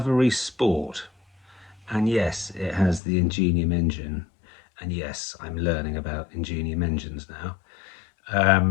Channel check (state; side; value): drops out; right; at 3.0 s